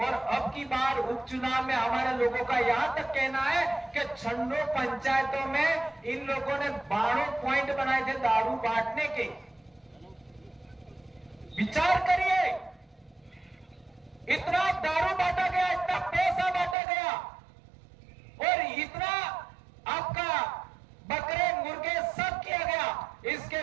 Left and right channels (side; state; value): left; drops out; at 16.8 s